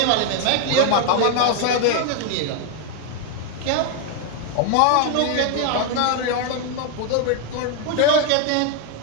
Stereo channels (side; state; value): both; different; correlation 0.01